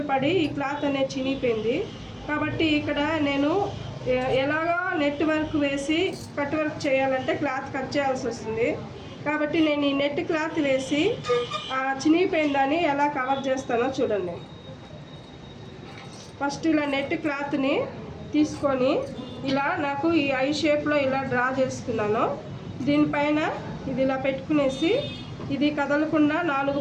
పడి ఈ క్లాత్ అనేది చినిగిపోయింది. కాబట్టి ఇక్కడ నేను ఎలాగో నెట్ వర్క్ వేసి కట్ వర్క్ చేయాలంటే క్లాత్ కట్ చేయాల్సి వస్తుంది. కాబట్టి నేను ఈ నెట్ క్లాత్ వేసి చినిగిపోయిందని ఎలా కవర్ చేస్తానో చూడండి. ఫస్ట్ ఇలా నెట్ క్లాత్ని తీసుకొని ఇలా నాకు ఈ ఐ షేప్లో ఇలా డ్రా చేసుకున్నాను. దీనిపైన ఇది ఇలా పెట్టుకునేసి ఇది కదలకుండా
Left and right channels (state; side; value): identical; both; correlation 1.00